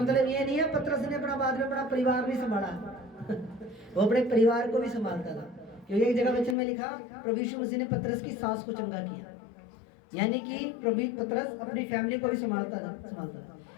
ये नहीं है पतरस ने अपना बाद में अपना परिवार नहीं संभाला वो अपने परिवार को भी संभालता था, क्योंकि एक जगह वचन में लिखा प्रभु यीशु मसीह ने पतरस की सास को चंगा किया, यानी कि प्रभु पतरस अपनी फैमिली को भी संभालता था।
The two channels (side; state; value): right; drops out; at 6.6 s